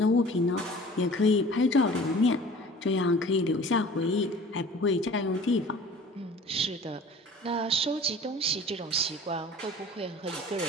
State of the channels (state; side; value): normal; both; correlation 0.45